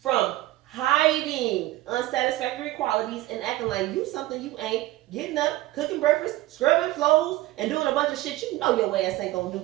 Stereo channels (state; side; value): quieter; left; 16.9 dB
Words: hiding unsatisfactory qualities and acting like you something you ain't, getting up, cooking breakfast, scrubbing floors, and doing a bunch of shit you know your ass ain't gonna do.